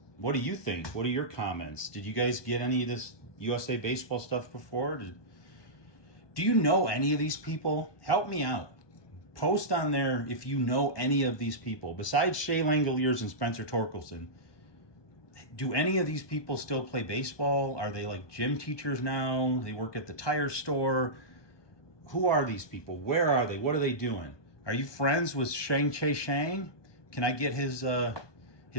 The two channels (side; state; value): right; late; 1.2 ms